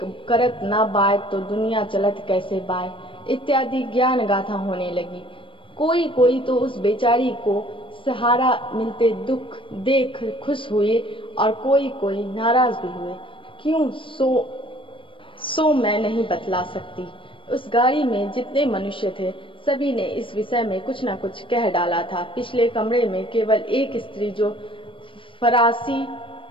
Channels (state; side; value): late; right; 0.25 ms